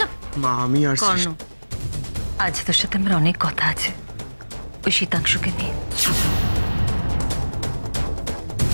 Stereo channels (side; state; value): both; inverted; correlation -1.00